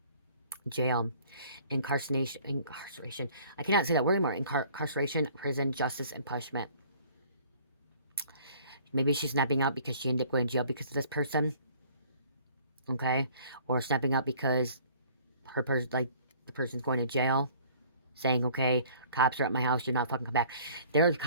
Jail. Incarceration. I cannot say that word anymore. Incarceration, prison, justice, and punishment. Maybe she's snapping out because she ended up going to jail because of this person. Okay? Or snapping out because the person's going to jail. Saying, okay, cops are at my house, you're not fucking come back. The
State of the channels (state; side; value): inverted; both; correlation -0.54